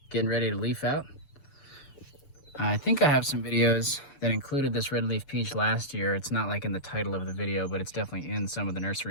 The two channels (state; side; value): late; right; 6.8 ms